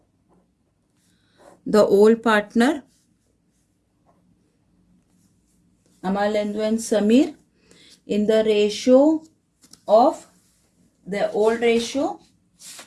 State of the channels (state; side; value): identical; both; correlation 1.00